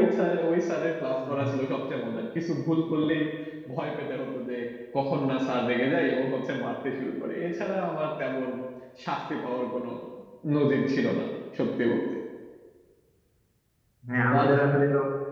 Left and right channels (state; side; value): identical; both; correlation 1.00